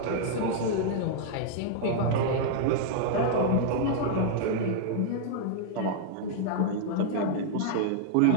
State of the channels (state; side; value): different; both; correlation -0.01